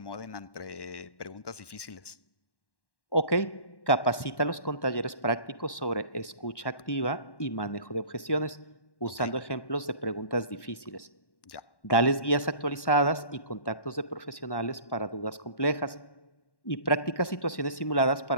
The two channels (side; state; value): right; late; 1.1 ms